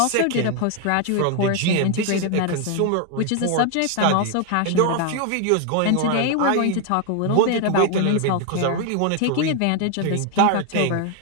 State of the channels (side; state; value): both; different; correlation 0.00